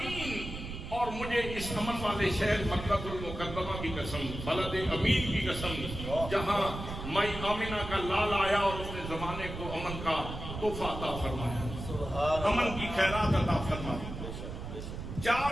اور مجھے اس امن والے شہر مکہ المکرمہ کی قسم، بلد امین کی قسم جہاں مائی آمنہ کا لال آیا اور اس نے زمانے کو امن کا تحفہ عطا فرمایا، امن کی خیرات عطا فرمائی۔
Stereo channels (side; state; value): right; noise; rumble, 8 dB below the sound